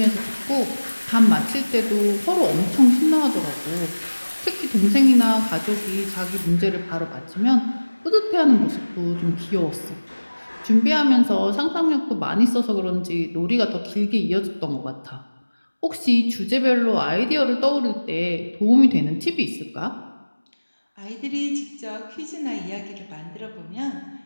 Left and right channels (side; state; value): both; inverted; correlation -1.00